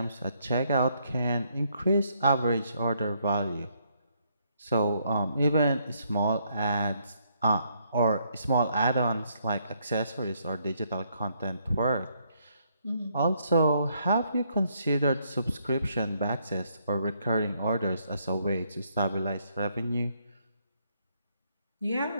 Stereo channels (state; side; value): inverted; both; correlation -0.72